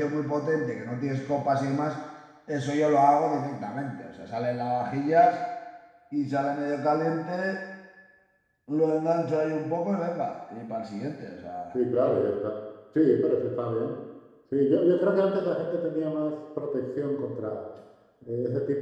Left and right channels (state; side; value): identical; both; correlation 1.00